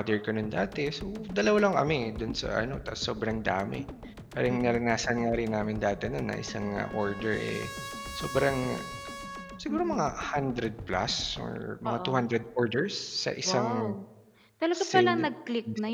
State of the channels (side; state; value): both; identical; correlation 1.00